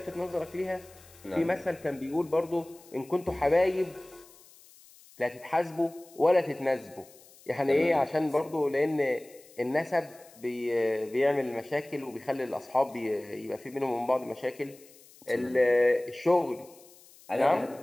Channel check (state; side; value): noise; left; hiss, 24 dB below the sound